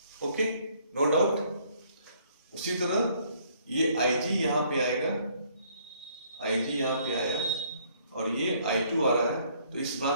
ओके, नो डाउट। उसी तरह ये IG यहाँ पे आएगा, IG यहाँ पे आया और ये I2 आ रहा है, तो इस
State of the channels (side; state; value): both; inverted; correlation -0.64